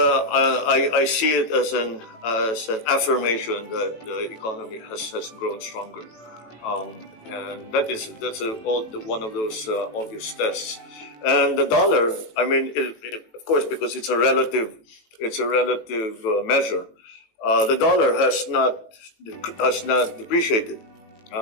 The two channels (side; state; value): right; late; 18 ms